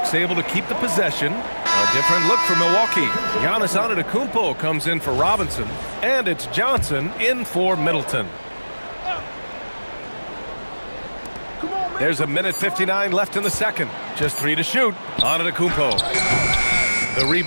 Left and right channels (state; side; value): inverted; both; correlation -1.00